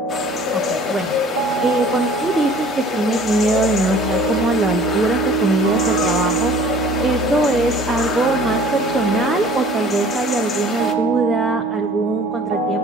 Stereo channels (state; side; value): normal; both; correlation 0.50